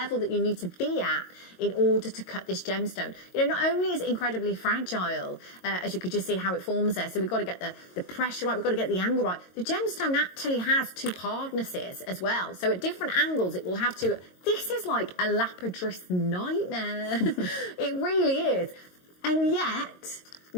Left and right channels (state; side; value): late; right; 22 ms